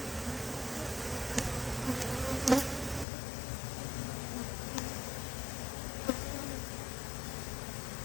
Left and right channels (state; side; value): drops out; right; at 3.1 s